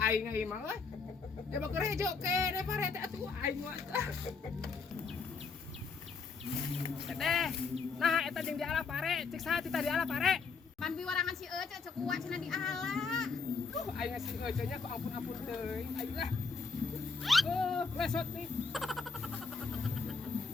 mah we. Jaba gerejo kene parete atuh aing mah. Teteh. Nah, eta jeung di ala pare, cek saha kita di ala pare. Man biwarangan si Ece cek kuat cenah di ala. Aing si Ece nya kok ampun teuing. Aing lah. Lesot nih.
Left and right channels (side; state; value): right; quieter; 4.8 dB